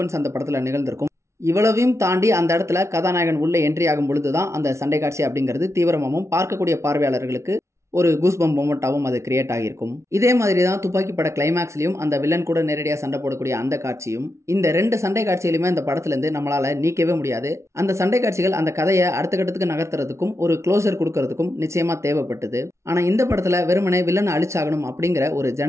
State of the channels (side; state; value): left; late; 0.13 ms